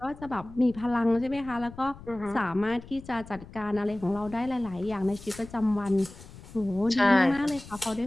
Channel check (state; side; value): noise; left; rumble, 17 dB below the sound